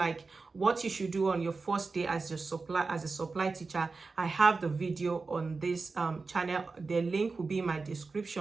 what you should do on your first day as a supply teacher, I have the video on this channel. The link will be in my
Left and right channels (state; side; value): quieter; left; 4.1 dB